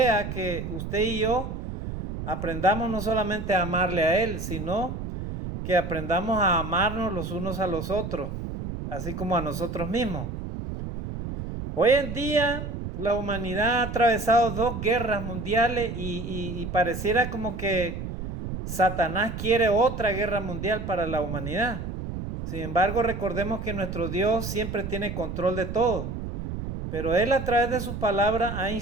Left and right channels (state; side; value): noise; right; rumble, 6 dB below the sound